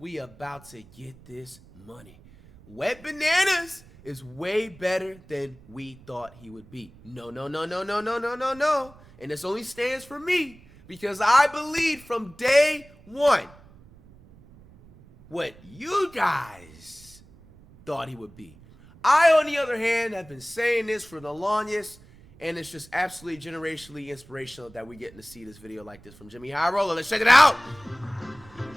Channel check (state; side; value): noise; right; rumble, 23 dB below the sound